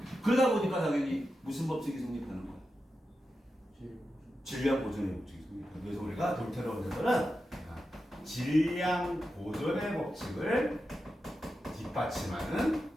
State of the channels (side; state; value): both; normal; correlation 0.90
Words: 그러다 보니까 당연히 무슨 법칙이 성립하는 거야? 질량 보존의 법칙이 성립하는 거야. 그래서 우리가 돌턴의 원자설은 질량 보존의 법칙을 뒷받침하는